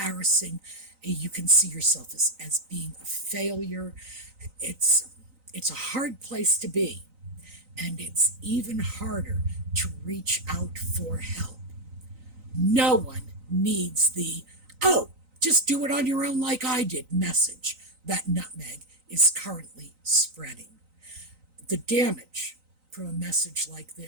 You can see yourself as being a failure. It's a hard place to be, and it's even harder to reach out for help. No one needs the, oh, just do it on your own like I did message that Nutmeg is currently spreading. The damage from a message like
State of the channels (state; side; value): late; left; 3.9 ms